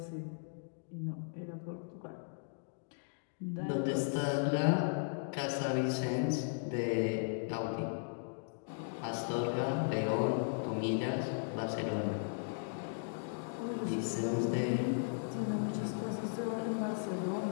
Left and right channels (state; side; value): silent; right; digital silence